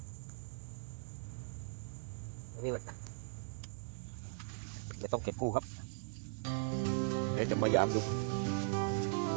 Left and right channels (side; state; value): left; silent; 51 dB below the other